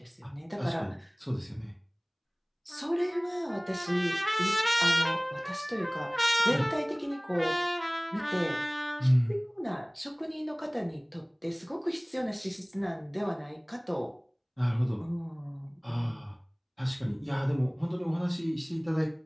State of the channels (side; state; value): both; identical; correlation 1.00